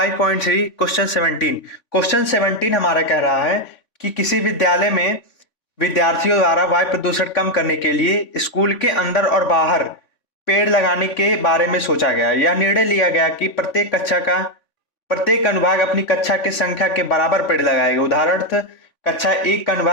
question 17 हमारा कह रहा है कि किसी विद्यालय में विद्यार्थियों द्वारा वायु प्रदूषण कम करने के लिए स्कूल के अंदर और बाहर पेड़ लगाने के बारे में सोचा गया। यह निर्णय लिया गया कि प्रत्येक अनुभाग अपनी कक्षा की संख्या के बराबर पेड़ लगाएगा। उदाहरणार्थ, कक्षा 1 का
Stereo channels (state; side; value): late; right; 3.5 ms